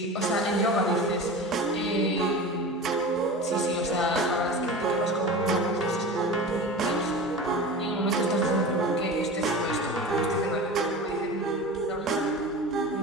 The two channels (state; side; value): normal; both; correlation 0.32